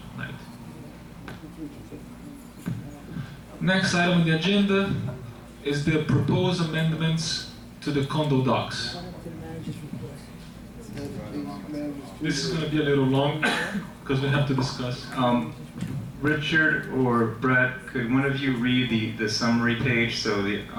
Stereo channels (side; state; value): both; identical; correlation 1.00